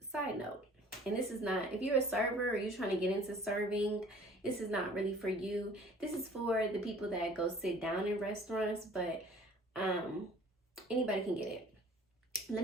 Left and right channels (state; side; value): normal; both; correlation 0.51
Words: Side note, and this is not, if you're a server or you're trying to get into serving, this is not really for you. This is for the people that go sit down in restaurants, but anybody can get it. Let